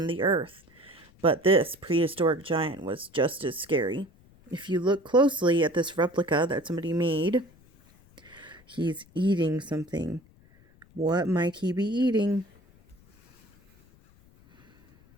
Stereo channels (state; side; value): noise; left; rumble, 28 dB below the sound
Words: the earth. But this prehistoric giant was just as scary. If you look closely at this replica that somebody made, he's eating something. What might he be eating?